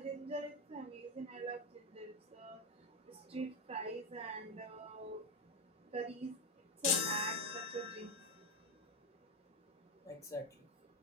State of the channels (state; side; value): normal; both; correlation 0.09